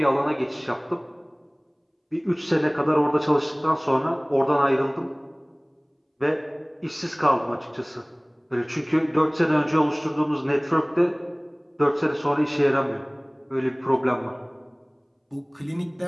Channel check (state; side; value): identical; both; correlation 1.00